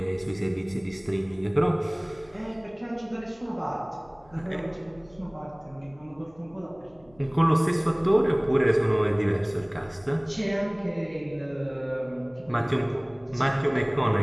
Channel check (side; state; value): left; noise; hum, 29 dB below the sound